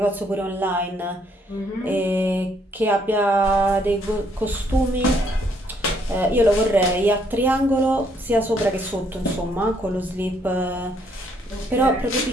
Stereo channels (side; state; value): both; normal; correlation 0.69